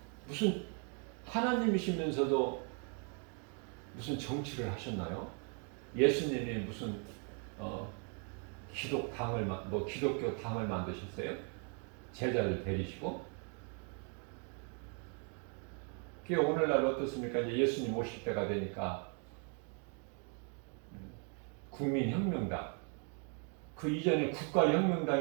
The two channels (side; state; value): left; quieter; 39.8 dB